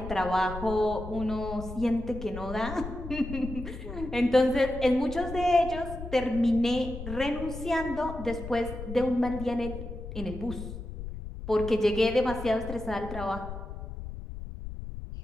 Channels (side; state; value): left; noise; rumble, 9 dB below the sound